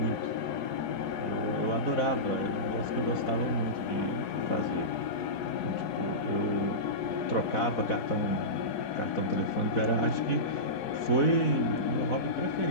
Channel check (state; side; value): late; right; 4.7 ms